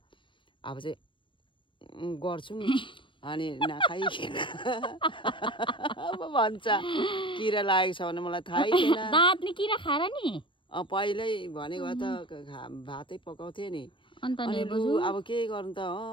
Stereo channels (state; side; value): late; right; 0.24 ms